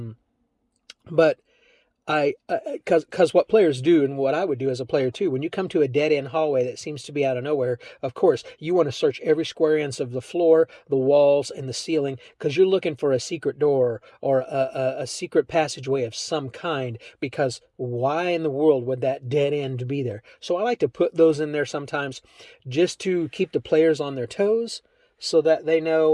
But because what players do, and what I would do as a player too, when you come to a dead end hallway that seems to be out of nowhere, of course, you want to search every square inch of the floor, the walls, and the ceiling, because you're looking for a secret door or a secret passageway of some kind, because why in the world would that dead end be there? So I like to put those in there sometimes just to keep the players on their toes so that they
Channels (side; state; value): both; identical; correlation 1.00